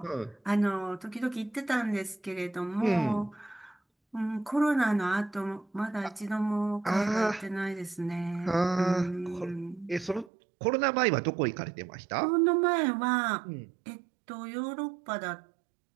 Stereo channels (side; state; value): left; drops out; at 10.3 s